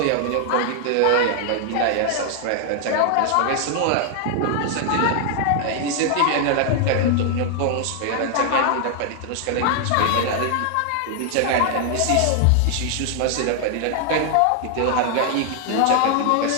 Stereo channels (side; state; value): both; different; correlation 0.00